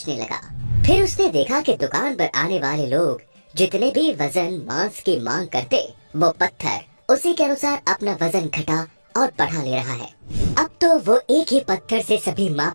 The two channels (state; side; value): inverted; both; correlation -1.00